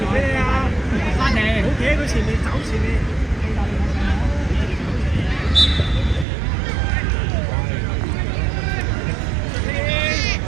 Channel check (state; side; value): drops out; left; at 6.2 s